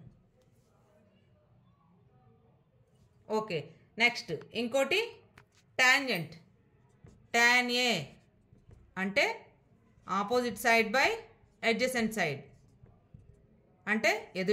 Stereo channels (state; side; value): identical; both; correlation 1.00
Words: ఓకే, నెక్స్ట్ ఇంకోటి టాంజెంట్. tan A అంటే opposite side by adjacent side, అంటే